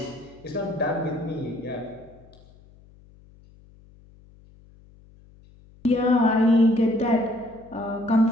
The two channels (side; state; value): left; noise; hum, 26 dB below the sound